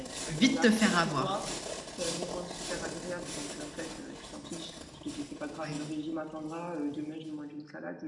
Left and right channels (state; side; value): identical; both; correlation 1.00